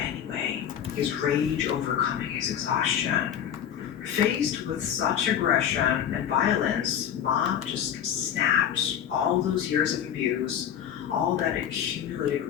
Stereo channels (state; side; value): quieter; right; 9.4 dB